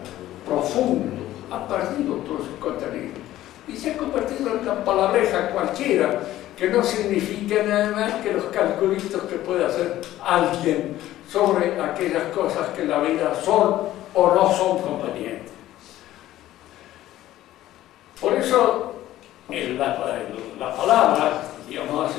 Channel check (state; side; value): quieter; right; 14.3 dB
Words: profundo, ha perdido todo su contenido y se ha convertido en una palabreja cualquiera que no significa nada más que los calculitos que puede hacer alguien sobre aquellas cosas que en la vida son o no son convenientes. Por eso, en la palabra, digamos